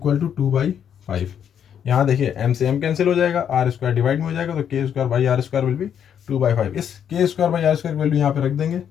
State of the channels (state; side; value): quieter; right; 8.7 dB